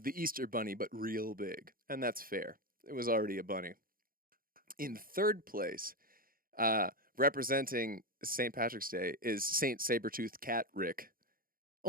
the Easter Bunny, but real big. And that's fair. It was already a bunny. In third place, representing St. Patrick's Day, is St. Sabertooth Cat Rick.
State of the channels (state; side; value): late; left; 0.42 ms